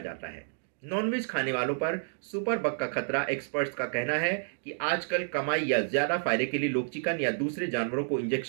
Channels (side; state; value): left; silent; digital silence